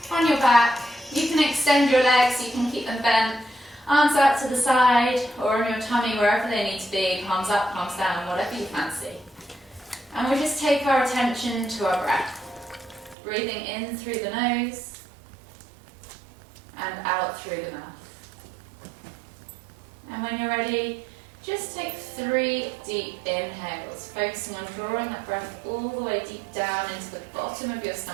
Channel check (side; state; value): left; drops out; at 13.2 s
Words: on your back. You can extend your legs, you can keep them bent, arms out to the side or on your tummy, wherever they need to be, palms up, palms down, whatever you fancy. And we'll just take our attention to our breath. Breathing in through the nose and out through the mouth. And when you're ready, just take 3 deep inhales, focusing on drawing that breath all the way deep down into the bottom of your